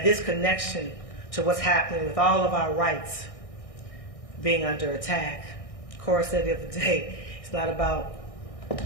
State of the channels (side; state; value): right; late; 1.6 ms